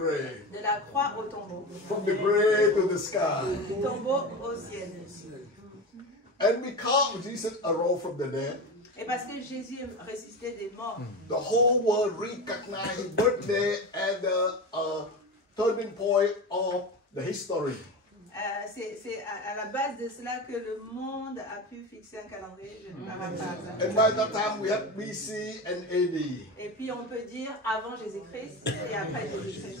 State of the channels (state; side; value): normal; both; correlation 0.24